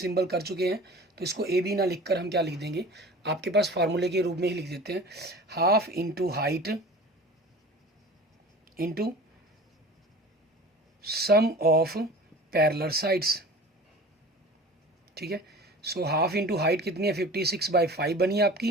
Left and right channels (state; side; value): normal; both; correlation 0.40